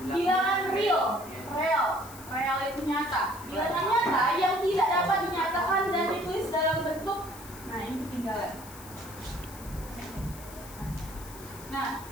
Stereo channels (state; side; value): noise; left; hiss, 17 dB below the sound